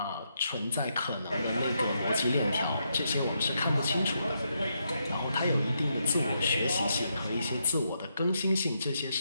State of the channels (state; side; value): inverted; both; correlation -0.80